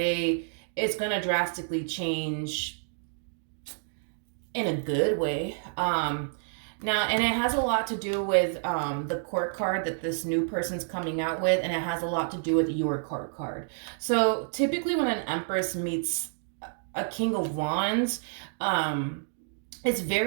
it's going to drastically change in a good way. Now, and it has a lot to do with the court card that this new person's coming out with, and it has a lot to do with your court card. So typically, when an Empress meets a King of Wands, um, it's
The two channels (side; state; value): left; silent; digital silence